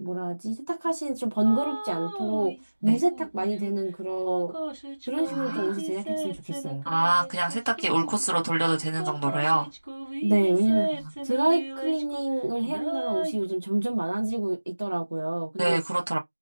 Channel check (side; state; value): both; inverted; correlation -1.00